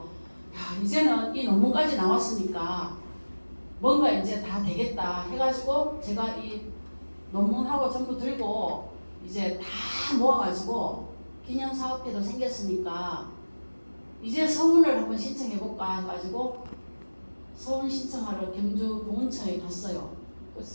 이제는 이 논문까지 나왔으니까 뭔가 이제 다 되겠다 해가지고 제가 이 논문하고 전부 들고 이제 다 모아가지고 기념사업회도 생겼으니까 이제 서문을 한번 신청해볼까 해가지고 서문 신청하러 경주 보훈처에 갔어요. 그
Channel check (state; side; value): inverted; both; correlation -1.00